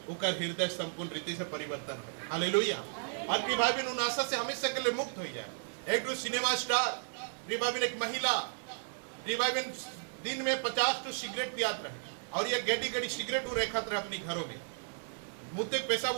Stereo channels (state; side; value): silent; left; digital silence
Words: उकर हृदय संपूर्ण रीति से परिवर्तन हो। हालेलुया। और प्रिय भाई बहन उन आशा से हमेशा के लिए मुक्त हो जाए। एक सिनेमा स्टार प्रिय भाई बहन एक महिला प्रिय भाई बहन दिन में 50 तो सिगरेट पियात रहे और ये गेडी गेडी सिगरेट रेखत रहे अपनी घरों में। मुँह पैसा